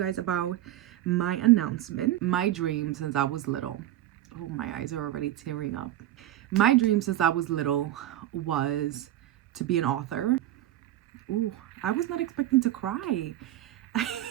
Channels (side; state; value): left; quieter; 13.7 dB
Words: about my announcement. My dream since I was little. Oh, my eyes are already tearing up. My dream since I was little was to be an author. Ooh, I was not expecting to cry.